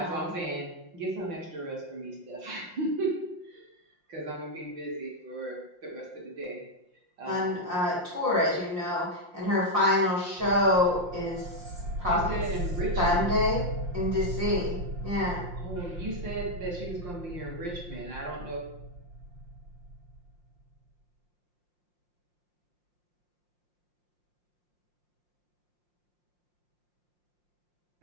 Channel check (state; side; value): late; left; 5.6 ms